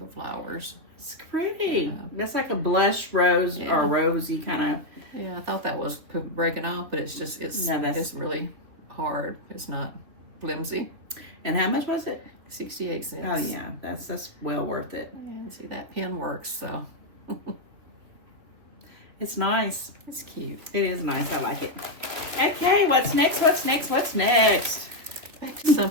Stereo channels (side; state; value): left; late; 3.5 ms